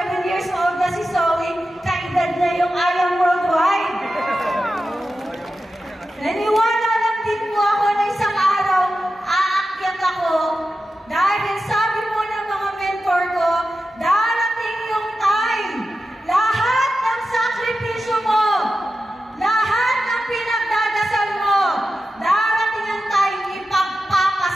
years old na si Zoe, kaedad na yung Ayang Worldwide. Naniwala lang din po ako na isang araw, aakyat ako dahil sabi po ng mga mentor ko, darating yung time, lahat ng sakripisyo mo, lahat ng pinagdadasal mo, darating ang time,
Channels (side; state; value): both; normal; correlation 0.92